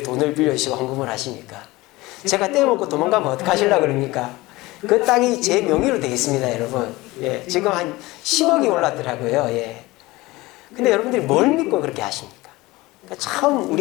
돈을 빌려주시고 헌금을 하십니까? 제가 떼먹고 도망가면 어떡하시려고 그럽니까? 그 땅이 제 명의로 되어 있습니다, 여러분. 예, 지금 한 10억이 올랐더라고요. 예. 근데 여러분들이 뭘 믿고 그렇게 하십니까? 그러니까 참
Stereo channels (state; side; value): quieter; right; 20.4 dB